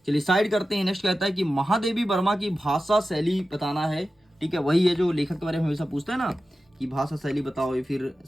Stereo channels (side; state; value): both; normal; correlation 0.93